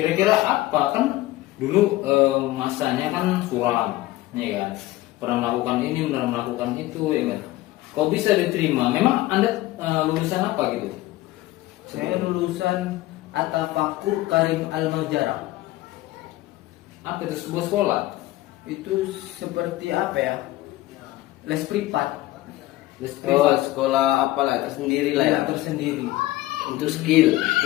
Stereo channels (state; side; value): quieter; right; 17.2 dB